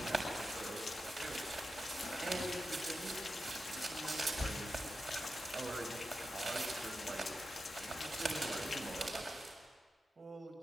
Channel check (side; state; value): both; normal; correlation 0.90